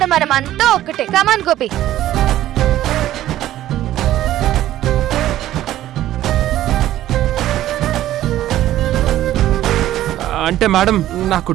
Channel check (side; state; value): left; quieter; 13.5 dB